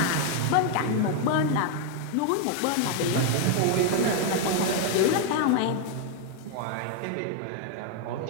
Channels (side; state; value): both; different; correlation 0.01